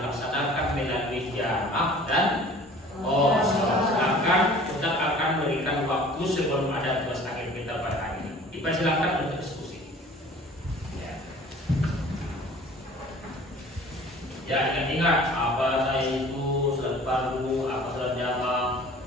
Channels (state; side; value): normal; both; correlation 0.47